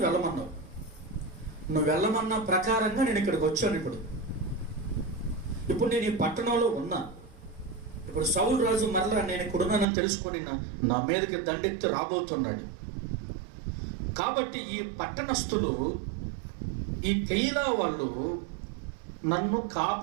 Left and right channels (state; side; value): drops out; left; at 9.9 s